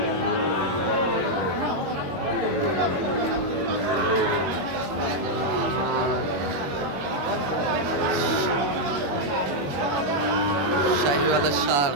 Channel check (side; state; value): left; late; 21 ms